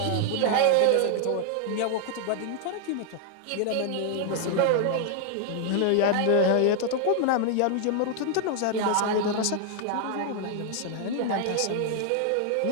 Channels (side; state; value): both; different; correlation 0.00